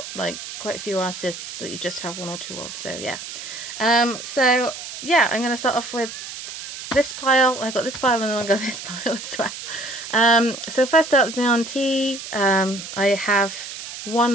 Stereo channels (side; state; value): right; noise; hiss, 10 dB below the sound